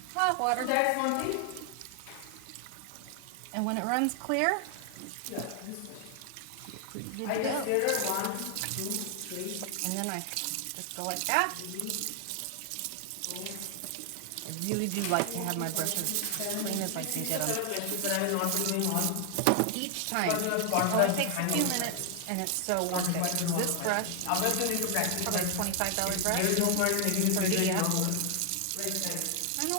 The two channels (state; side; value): different; both; correlation 0.00